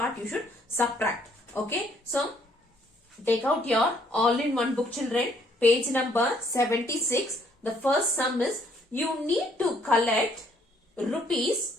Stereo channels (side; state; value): both; normal; correlation 0.66